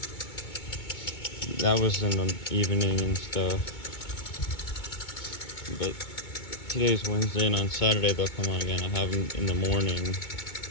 that was in the evening and stuff. But today's Wednesday, and on Saturday they'll come on again. I have them in the morning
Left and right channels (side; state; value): right; late; 2.2 ms